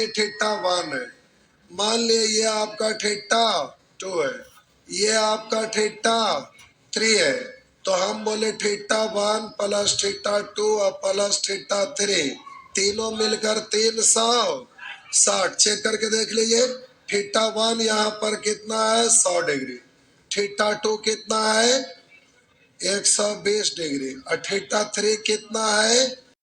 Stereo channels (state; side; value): identical; both; correlation 1.00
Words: थीटा वन है, मान लिया ये आपका थीटा टू है, ये आपका थीटा थ्री है, तो हम बोले theta one plus theta two और प्लस थीटा थ्री, तीनों मिलकर 360। चेक करके देख लीजिए, थीटा वन यहाँ पर कितना है 100 डिग्री, थीटा टू कितना है 120 डिग्री, और थीटा थ्री कितना है